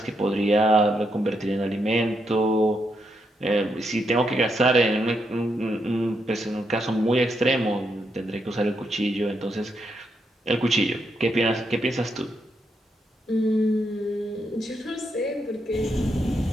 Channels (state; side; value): normal; both; correlation 0.80